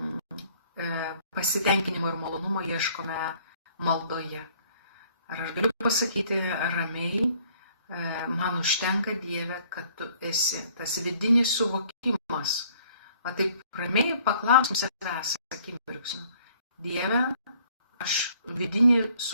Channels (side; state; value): both; inverted; correlation -0.60